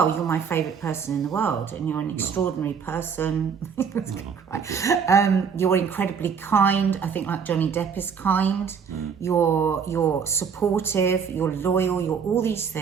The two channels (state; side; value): quieter; left; 6.6 dB